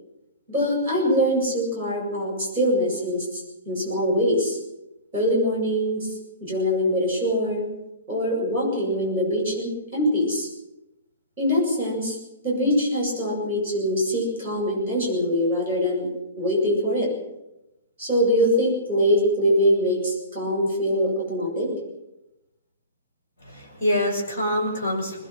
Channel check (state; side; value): inverted; both; correlation -0.33